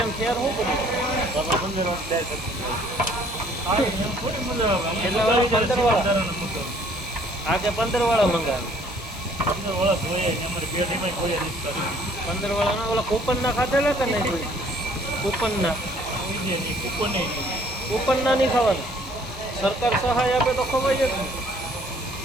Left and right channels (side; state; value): both; normal; correlation 0.59